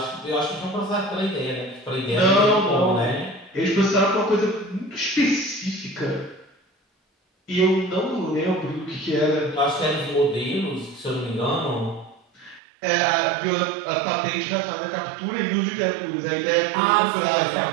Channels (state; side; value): drops out; left; at 12.6 s